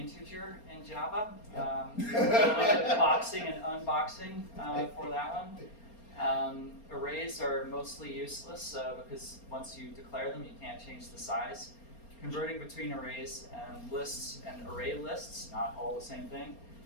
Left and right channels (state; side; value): late; right; 4.3 ms